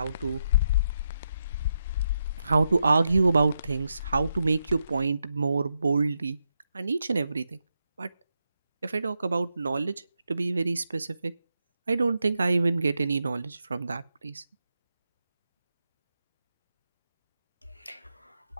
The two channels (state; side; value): inverted; both; correlation -0.83